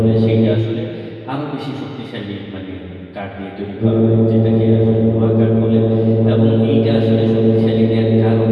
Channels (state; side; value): identical; both; correlation 1.00